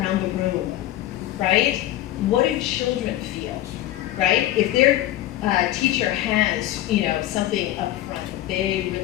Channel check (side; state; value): right; quieter; 14.2 dB